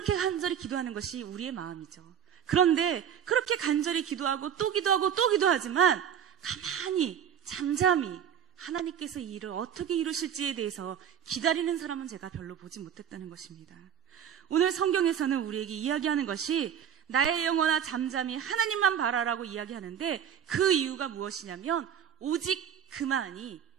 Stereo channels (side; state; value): left; quieter; 8.8 dB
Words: 간절히 기도하는 것이 우리의 마음이죠. 그런데 그렇게 간절히 기도하고 또 기도하고 또 기도하지만 가만히 잠잠히 하나님께서 이 일을 어떻게 이루실지에 대해서 기다리는 사람은 제가 별로 보지 못했다는 것입니다. 오늘 성경에서는 우리에게 이야기하는 것이 나의 영혼아 잠잠히 하나님만 바라라고 이야기하는데 그 이유가 무엇이냐면 오직 그만이